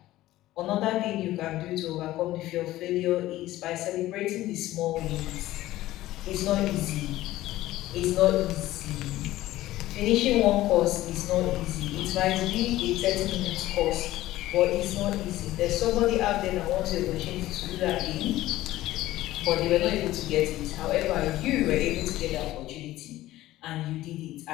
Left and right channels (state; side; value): quieter; right; 15.8 dB